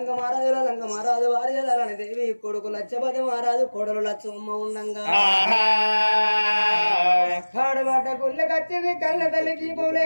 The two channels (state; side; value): inverted; both; correlation -1.00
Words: మహారాజు వారి లలని దేవి కొడుకు లచ్చపతి మహారాజు కొడలు లచ్చమ్మ ఉండంగా కాడబడ్డ గుళ్ళకచ్చింది కళ్ళ తల్లి దీపం